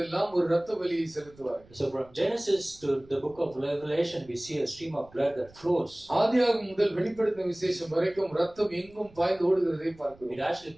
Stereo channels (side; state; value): right; noise; rumble, 25 dB below the sound